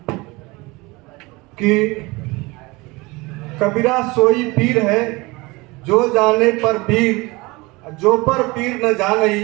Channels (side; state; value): left; quieter; 23.4 dB